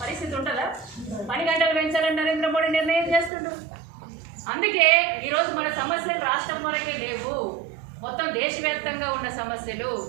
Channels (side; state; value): left; drops out; at 3.3 s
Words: పరిస్థితి ఉంటుందా? 10 గంటలు పెంచాలని నరేంద్ర మోడీ నిర్ణయం చేస్తుండ్రు. అందుకే ఈరోజు మన సమస్యలు రాష్ట్రం వరకే లేవు, మొత్తం దేశవ్యాప్తంగా ఉన్న సమస్యలు.